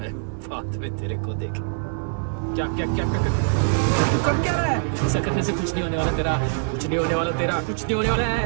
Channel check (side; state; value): left; silent; 63 dB below the other